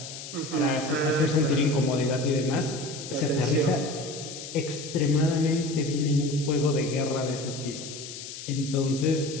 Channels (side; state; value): left; noise; hiss, 11 dB below the sound